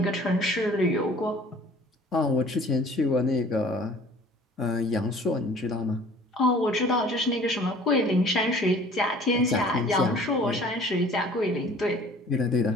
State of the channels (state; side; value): normal; both; correlation 0.50